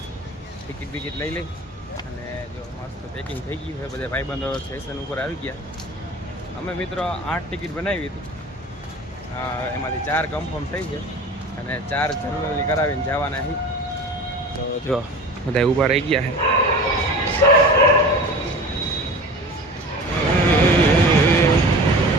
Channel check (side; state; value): both; normal; correlation 0.37